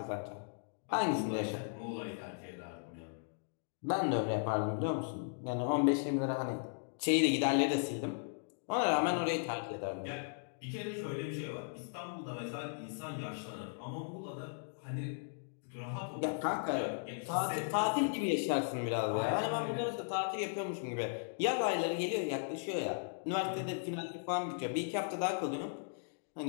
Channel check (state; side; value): silent; right; digital silence